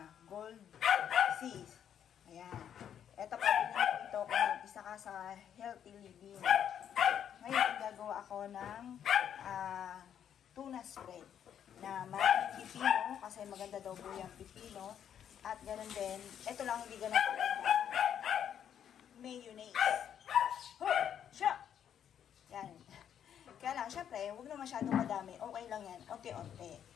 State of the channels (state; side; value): quieter; right; 9.2 dB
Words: Gold seas. Ayan. Ito pa, binili ito kung isa ka sa healthy living. Ngayon, gagawa ako ng tuna spread na maraming pipino kasi maganda daw po yung pipino. At ganoon din, ito lang hindi ganun pala. Mayonnaise. Siya! Yan. Kaya lang, syempre, huwag na masyadong madami. Okay lang yan. Unti-unti.